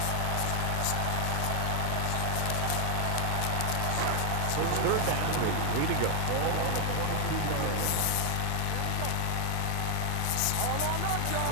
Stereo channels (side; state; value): both; different; correlation 0.00